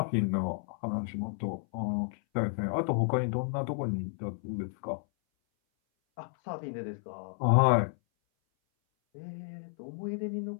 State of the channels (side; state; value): right; silent; 57 dB below the other